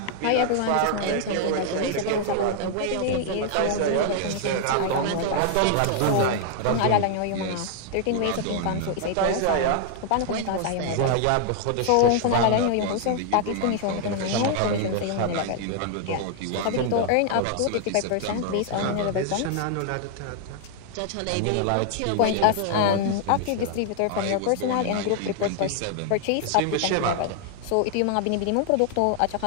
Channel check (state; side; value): different; both; correlation 0.00